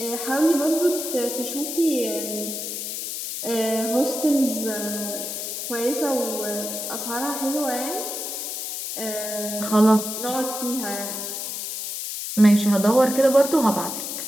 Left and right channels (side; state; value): left; noise; hiss, 5 dB below the sound